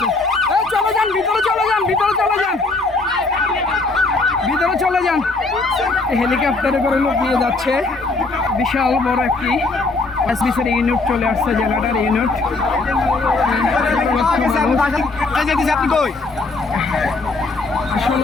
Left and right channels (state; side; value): quieter; right; 3.5 dB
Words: ভিতরে চলে যান। হেলিকপ্টারে করে লোক নিয়ে যাচ্ছে। বিশাল বড় একটি এসবিসির ইউনিট চলে আসছে, জেনারেটর ইউনিট।